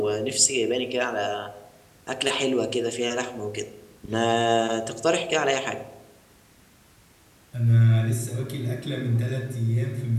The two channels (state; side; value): identical; both; correlation 1.00